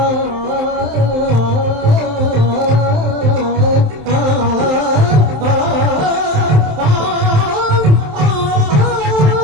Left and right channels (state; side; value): late; left; 27 ms